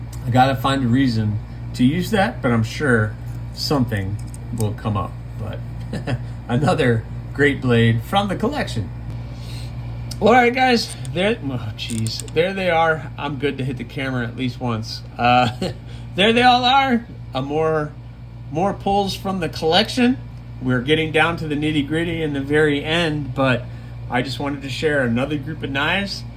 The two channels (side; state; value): both; identical; correlation 1.00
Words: I gotta find a reason to use that, but I'm sure something will come up. But another great blade from the collection. All right, guys, there they are. I'm good to hit the camera at least once. There they all are. More pulls from the collection. We're getting down to the nitty gritty in the very end, but I just wanted to share another group of knives